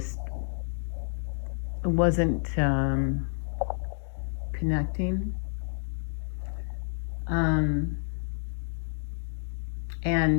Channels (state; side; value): silent; right; digital silence